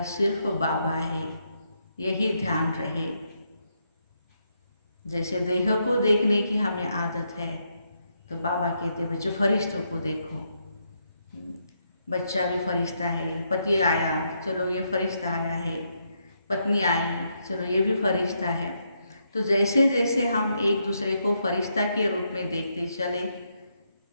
सिर्फ बाबा है, यही ध्यान रहे। जैसे देह को देखने की हमें आदत है, तो बाबा कहते बच्चे फरिश्तों को देखो, बच्चा भी फरिश्ता है, पति आया चलो ये फरिश्ता आया है, पत्नी आई चलो ये भी फरिश्ता है। तो जैसे जैसे हम एक दूसरे को फरिश्ता के रूप में देखते चले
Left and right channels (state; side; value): inverted; both; correlation -0.79